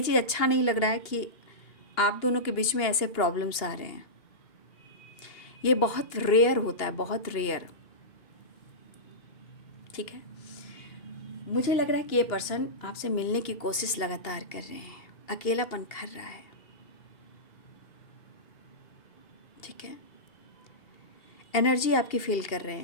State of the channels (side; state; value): right; late; 2.8 ms